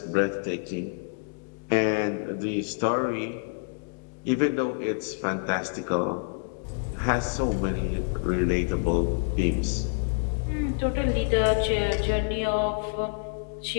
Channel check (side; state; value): right; silent; digital silence